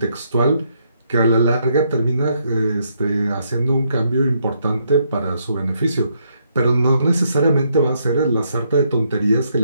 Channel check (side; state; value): both; inverted; correlation -0.74